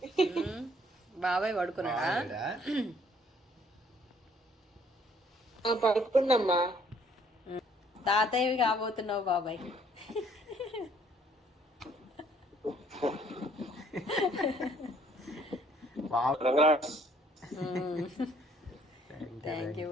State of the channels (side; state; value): both; normal; correlation 0.62